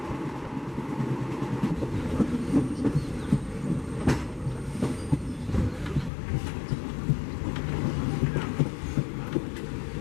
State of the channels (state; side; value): drops out; right; at 6.1 s